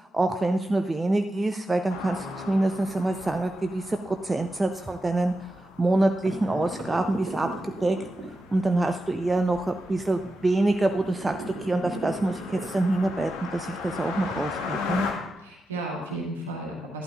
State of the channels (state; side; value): normal; both; correlation 0.89